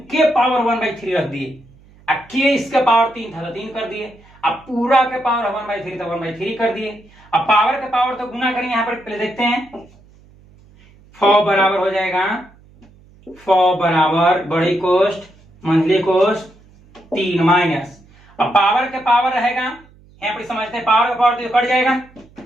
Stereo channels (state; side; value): noise; right; hum, 27 dB below the sound